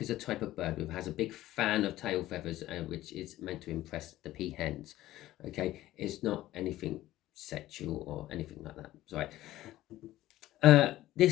is a type of bird who has a big fan of tail feathers, which is meant to impress the peahens. Okay, it's not anything sexual or anything like that. Sorry.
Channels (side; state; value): right; quieter; 15.3 dB